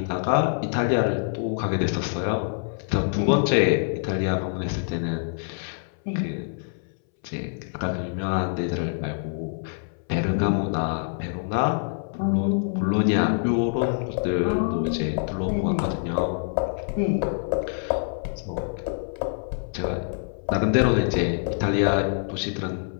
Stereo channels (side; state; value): right; silent; 61 dB below the other